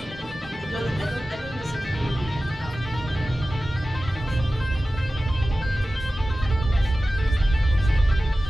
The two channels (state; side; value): normal; both; correlation 0.95